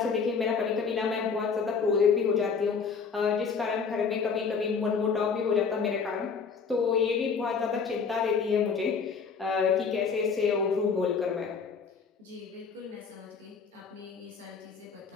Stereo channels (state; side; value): quieter; right; 5.6 dB